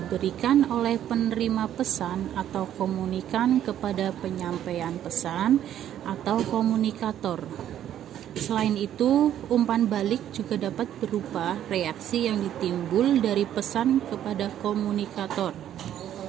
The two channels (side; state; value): left; quieter; 11.0 dB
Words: oleh penerima pesan atau komunikan kepada penyampaian pesan atau komunikator. Selain itu, umpan balik juga dapat berupa reaksi yang ditimbul dari pesan kepada komunikator.